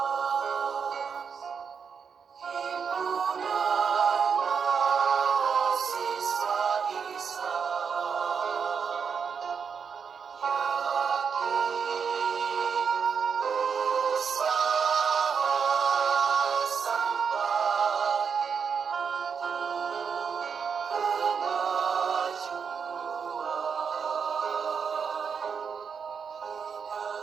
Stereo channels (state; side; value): quieter; left; 6.4 dB